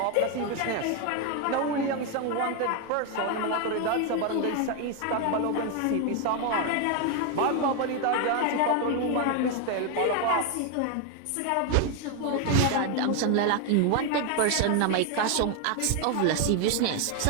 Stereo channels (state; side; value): different; both; correlation 0.01